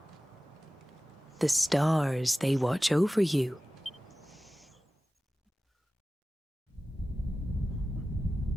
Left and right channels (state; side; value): normal; both; correlation 0.96